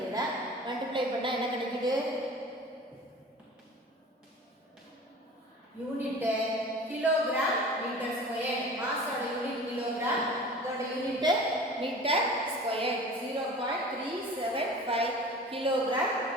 மல்டிப்ளை பண்ணால் என்ன கிடைக்குது? Unit kilogram metre square. மாஸோட யூனிட் கிலோகிராம், இதோட unit metre square. 0.375 kilogram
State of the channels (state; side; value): normal; both; correlation 0.40